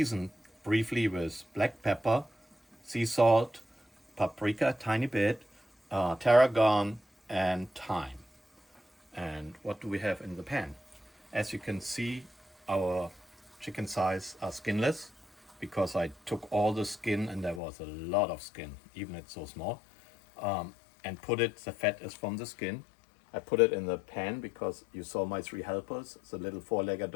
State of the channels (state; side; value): drops out; right; at 17.6 s